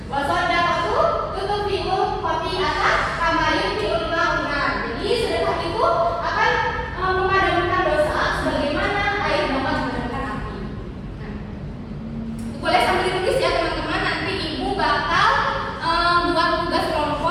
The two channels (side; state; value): both; identical; correlation 1.00